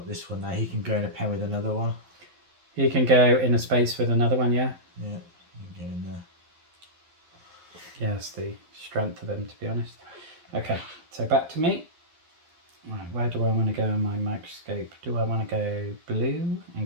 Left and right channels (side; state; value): left; late; 12 ms